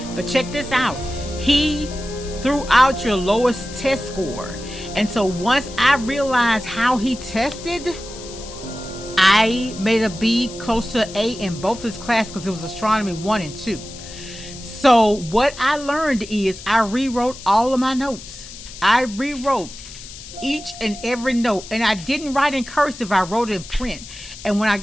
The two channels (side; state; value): left; noise; hiss, 15 dB below the sound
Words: But check this out. He threw out your lowest test score. And so once I realized how he tested, I made a B, close to A in both his classes, because it was astronomy 1 and 2. So what I learned is I rewrote all of my notes. I rewrote each and every note, and I didn't write in cursive. I wrote it in print. And when I